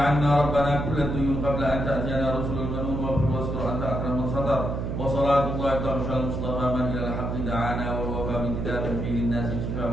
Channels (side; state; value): right; noise; hum, 3 dB below the sound